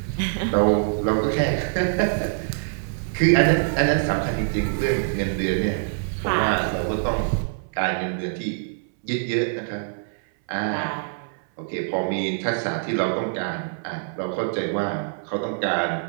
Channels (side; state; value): left; silent; 60 dB below the other